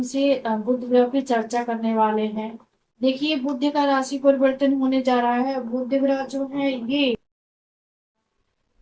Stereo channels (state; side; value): identical; both; correlation 1.00